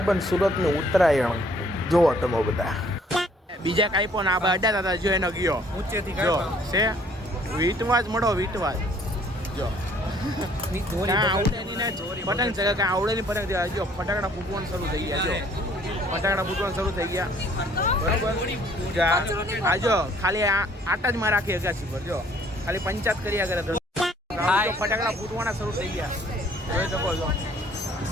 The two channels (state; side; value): normal; both; correlation 0.60